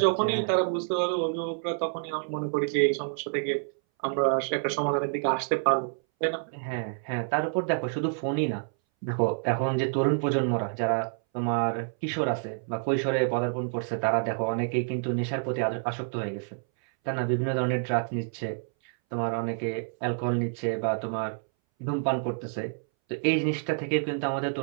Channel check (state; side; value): silent; left; 59 dB below the other